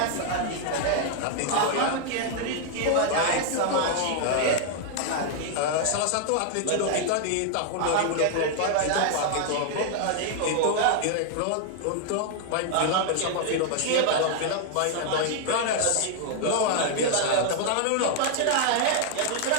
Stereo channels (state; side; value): different; both; correlation 0.00